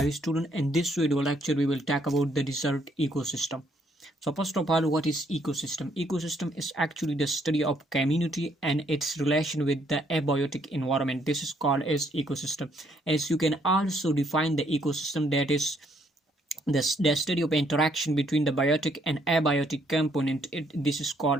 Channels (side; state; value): both; normal; correlation 0.69